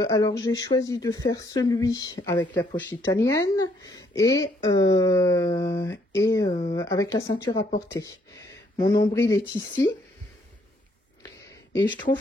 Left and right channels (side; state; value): both; normal; correlation 0.69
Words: alors j'ai choisi de faire celui avec la poche italienne et avec la ceinture à portée. Mon nombril est ici et je